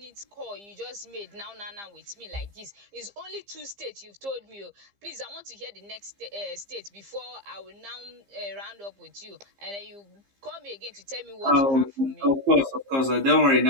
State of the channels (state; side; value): late; left; 15 ms